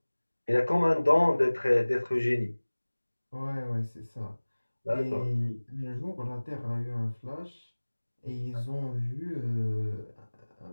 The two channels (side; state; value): both; inverted; correlation -1.00